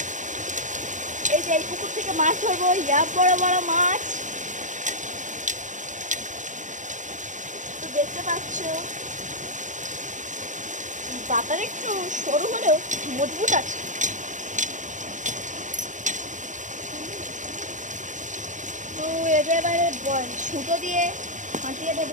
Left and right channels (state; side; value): late; left; 0.36 ms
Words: এই যে এই পুকুর থেকে মাছ ধরবো, ইয়া বড় বড় মাছ তো দেখতে পাচ্ছ। পাতার একটু সরু হলেও মজবুত আছে। তো এটা এবারে সুতো দিয়ে ফাটিয়ে